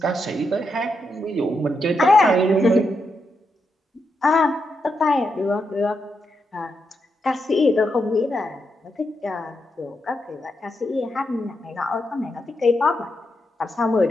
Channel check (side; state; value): both; normal; correlation 0.83